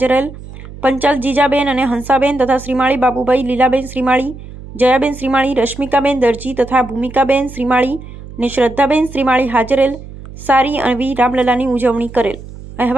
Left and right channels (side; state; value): right; noise; hum, 15 dB below the sound